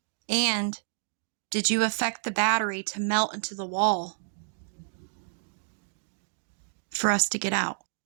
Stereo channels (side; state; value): left; silent; digital silence